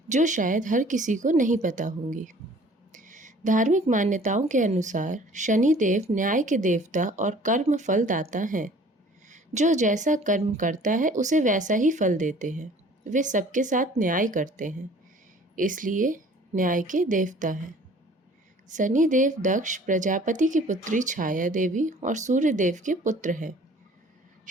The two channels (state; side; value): normal; both; correlation 0.51